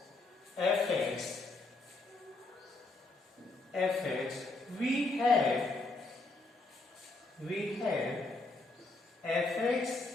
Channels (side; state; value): right; quieter; 3.3 dB